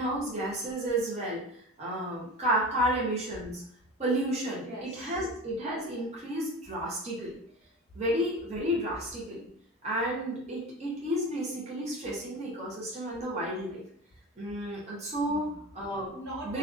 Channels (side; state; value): both; normal; correlation 0.31